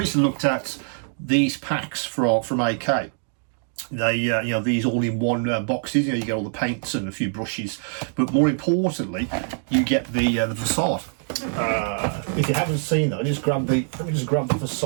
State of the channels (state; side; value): silent; left; digital silence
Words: looked at these packs from AK. They these all-in-one boxes. You get all the paints and a few brushes, but more importantly, you get the facade. If you haven't seen that, let me just grab the